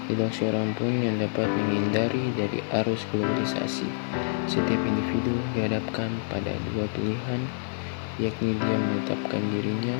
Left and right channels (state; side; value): silent; right; digital silence